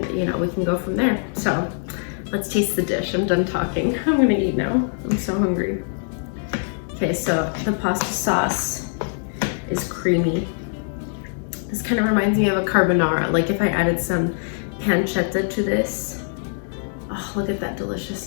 we can go from there. So let's taste the dish. I'm done talking. I'm gonna eat now. I'm so hungry. Okay, so the pasta sauce is creamy. This kind of reminds me of a carbonara, like if I added some pancetta to this. Oh, look at that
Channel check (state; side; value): silent; right; digital silence